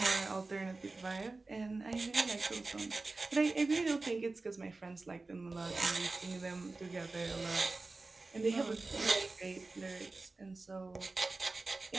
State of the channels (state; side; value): quieter; left; 3.5 dB